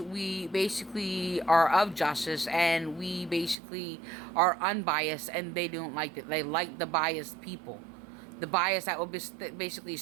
we basically are of justice, and we basically are unbiased, and they don't like it. They like the biased people. The bias that will basically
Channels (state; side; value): drops out; left; at 3.6 s